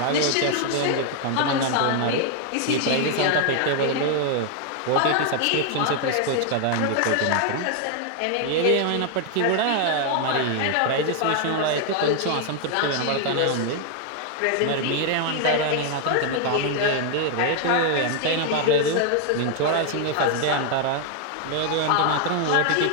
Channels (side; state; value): both; different; correlation 0.00